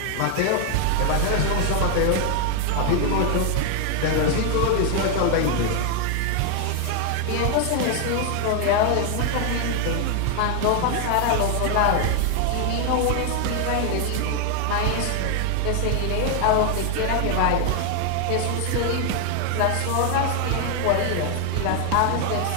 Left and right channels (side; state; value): both; different; correlation 0.00